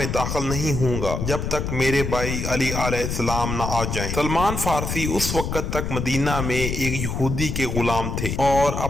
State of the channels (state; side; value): noise; left; rumble, 3 dB below the sound